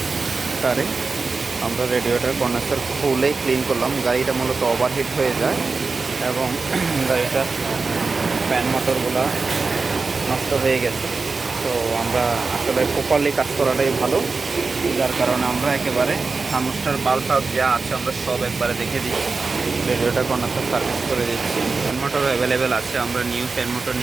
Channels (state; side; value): quieter; left; 4.2 dB